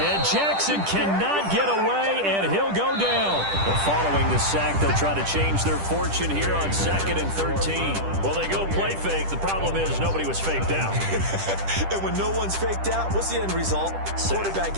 Jackson cannot get away, and he'll go down. But following the sack, they'll try to change their fortune here on 2nd and 13. Well, they go play fake. The problem is nobody was faked out. And when no one's faked out, what's the end result? Quarterback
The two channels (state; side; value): late; left; 10 ms